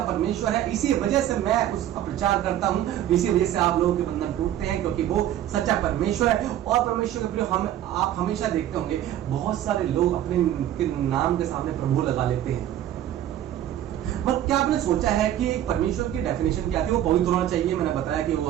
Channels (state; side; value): quieter; left; 11.9 dB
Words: परमेश्वर है। इसी वजह से मैं उसका प्रचार करता हूं, इसी वजह से आप लोगों के बंधन टूटते हैं, क्योंकि वो सच्चा परमेश्वर है। और परमेश्वर के प्रिय, आप हमेशा देखते होंगे बहुत सारे लोग अपने नाम के सामने प्रभु लगा लेते हैं। मतलब क्या आपने सोचा है कि एक परमेश्वर की डेफिनेशन क्या थी? वो पवित्र होना चाहिए। मैंने बताया कि वो